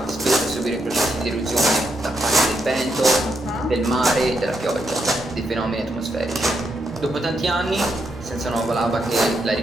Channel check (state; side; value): normal; both; correlation 0.80